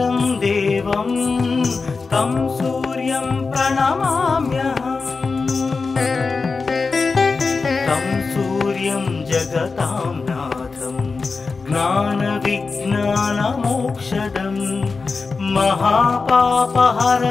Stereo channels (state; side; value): quieter; right; 4.4 dB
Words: देवं तं सूर्यं प्रणमाम्यहम्। तं सूर्यं जगतां नाथं ज्ञानविज्ञानमोक्षदं